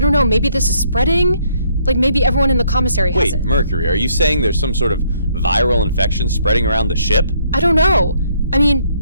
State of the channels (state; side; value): inverted; both; correlation -0.68